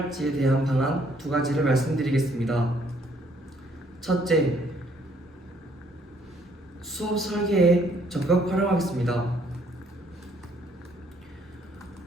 대한 방안 두 가지를 말씀드리겠습니다. 첫째, 수업 설계에 적극 활용하겠습니다.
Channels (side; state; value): both; normal; correlation 0.65